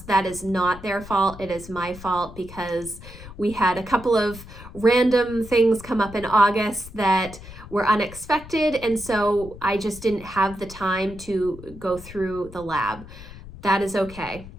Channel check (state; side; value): noise; left; rumble, 16 dB below the sound